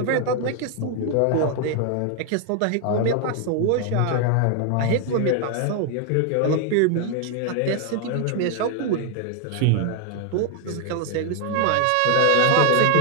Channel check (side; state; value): both; different; correlation 0.01